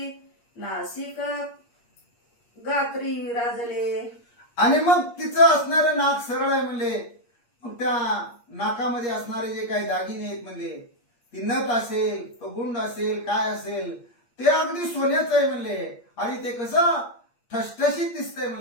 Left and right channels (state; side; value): late; right; 8.5 ms